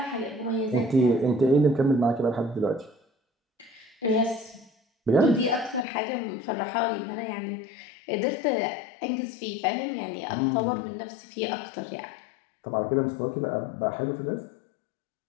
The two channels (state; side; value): drops out; right; at 5.9 s